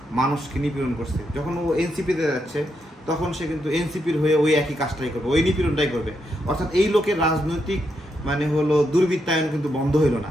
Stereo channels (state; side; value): normal; both; correlation 0.81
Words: মানুষকে নিপীড়ন করছে। যখন ও এনসিপিতে যাচ্ছে তখন সে কিন্তু এনসিপির হয়ে ওই একই কাজটাই করবে, ওই নিপীড়নটাই করবে। অর্থাৎ এই লোকের রাজনৈতিক দুর্বৃত্তায়ন কিন্তু বন্ধ হইল না।